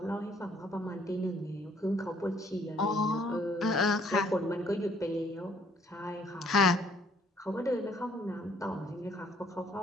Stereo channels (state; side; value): normal; both; correlation 0.64